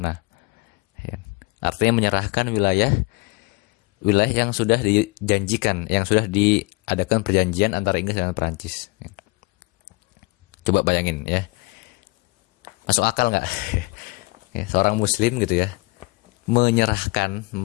Ya. Artinya menyerahkan wilayah yang sudah dijanjikan, yang sudah diadakan perjanjian antara Inggris dan Prancis. Coba bayangin ya, masuk akal nggak? Ya, seorang Muslim gitu ya,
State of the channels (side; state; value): right; quieter; 25.5 dB